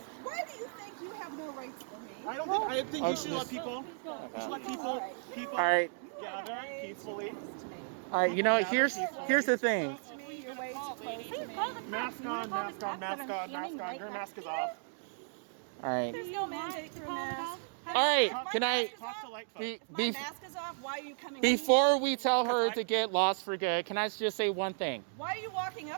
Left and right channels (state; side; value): silent; left; digital silence